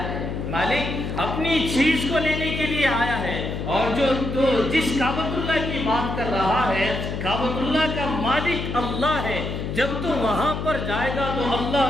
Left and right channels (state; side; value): noise; left; hum, 4 dB below the sound